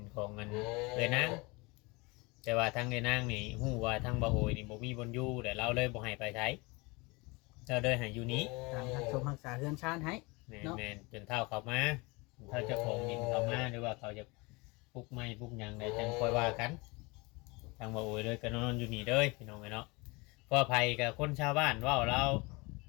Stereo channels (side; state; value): right; quieter; 26.0 dB